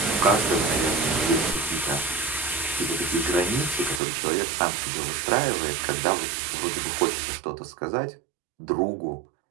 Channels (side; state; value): left; drops out; at 4.0 s